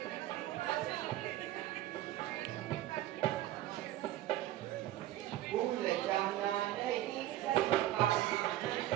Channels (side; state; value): left; quieter; 14.4 dB